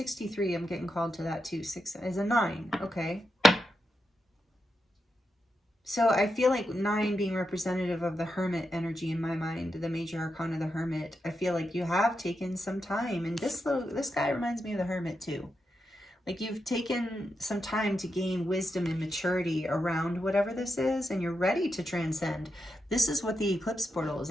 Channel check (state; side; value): normal; both; correlation 0.86